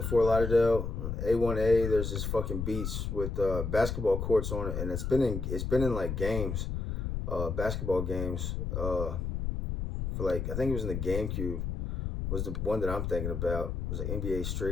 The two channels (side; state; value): left; noise; rumble, 3 dB below the sound